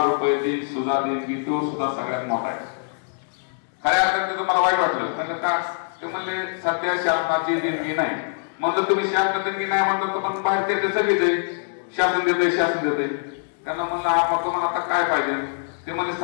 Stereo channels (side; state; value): right; silent; digital silence